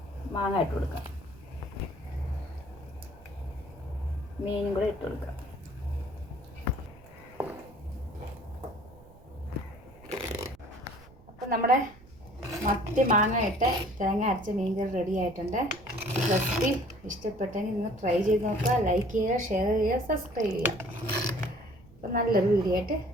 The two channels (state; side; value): noise; right; rumble, 23 dB below the sound